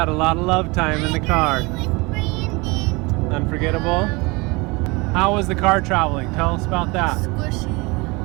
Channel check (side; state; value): left; quieter; 25.6 dB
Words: a lot of love time in the car. With Brandon. Unforgettable. How was the car traveling? Tell us about that.